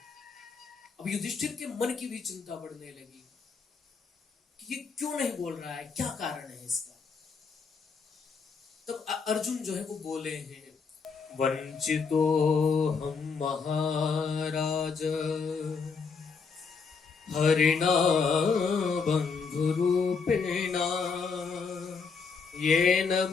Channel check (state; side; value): quieter; right; 5.3 dB